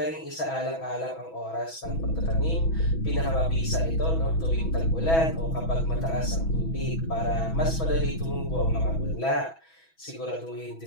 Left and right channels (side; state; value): right; late; 6.1 ms